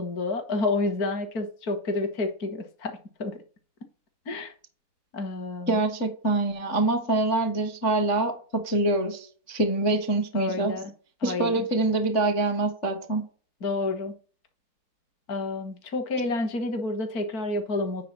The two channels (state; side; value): late; right; 3.6 ms